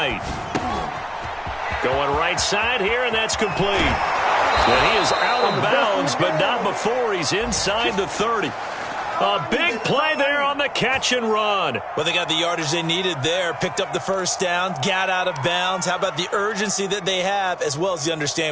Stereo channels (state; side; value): identical; both; correlation 1.00